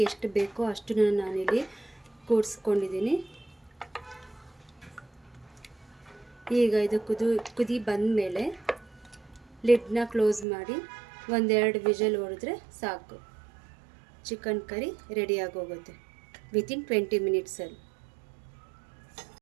ಎಷ್ಟು ಬೇಕೋ ಅಷ್ಟನ್ನು ನಾನಿಲ್ಲಿ ಕೂಡಿಸ್ಕೊಂಡಿದ್ದೀನಿ. ಈಗ ಇದು ಕುದಿ ಬಂದಮೇಲೆ ಲಿಡ್ನ ಕ್ಲೋಸ್ ಮಾಡಿ 1-2 ವಿಷಲ್ ಹೊಡೆದ್ರೆ ಸಾಕು. ಚಿಕನ್ ಕರಿ ರೆಡಿಯಾಗಿ ಹೋಗುತ್ತೆ ವಿತಿನ್ 20 ಮಿನಿಟ್ಸಲ್ಲಿ.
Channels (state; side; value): drops out; left; at 10.5 s